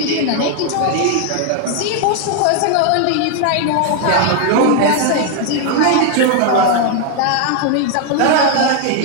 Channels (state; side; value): different; both; correlation 0.00